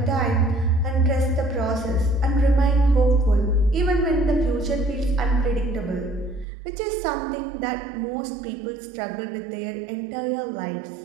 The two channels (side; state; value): left; drops out; at 6.5 s